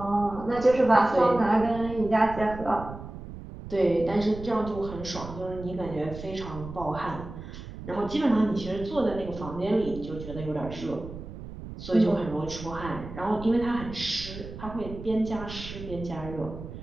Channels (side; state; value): right; noise; rumble, 12 dB below the sound